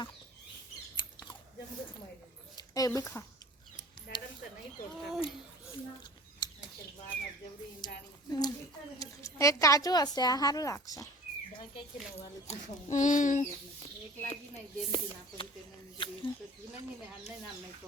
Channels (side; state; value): both; normal; correlation 0.44